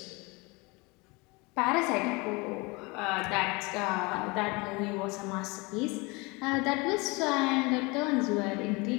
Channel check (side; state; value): right; quieter; 26.4 dB